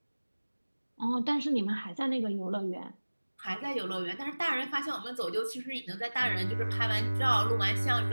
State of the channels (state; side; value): inverted; both; correlation -1.00